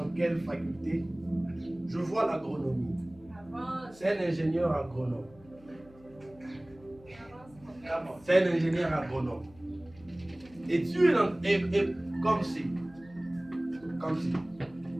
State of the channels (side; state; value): left; noise; hum, 24 dB below the sound